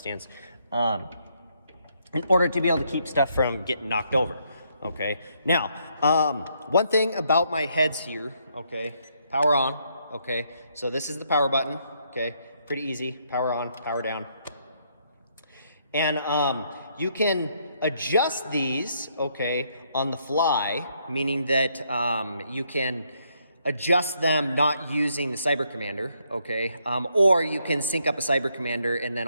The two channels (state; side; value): inverted; both; correlation -0.73